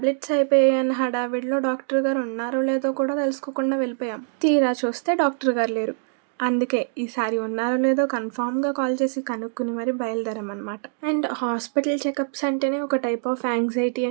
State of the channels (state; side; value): silent; left; digital silence